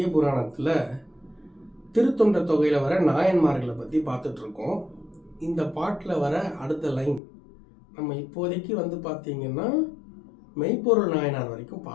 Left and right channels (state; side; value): drops out; right; at 7.2 s